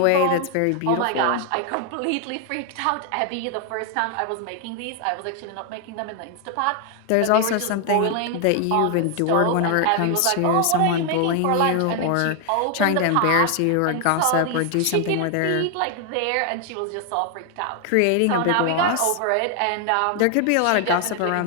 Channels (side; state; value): both; different; correlation 0.00